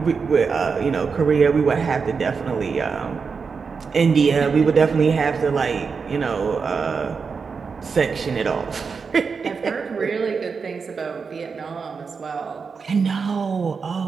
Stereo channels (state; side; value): quieter; left; 5.3 dB